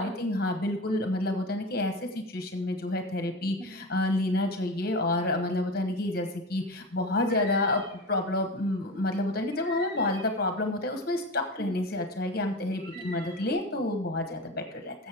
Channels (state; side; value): normal; both; correlation 0.27